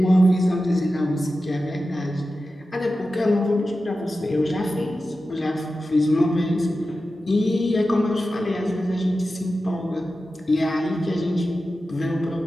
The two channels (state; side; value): normal; both; correlation 0.93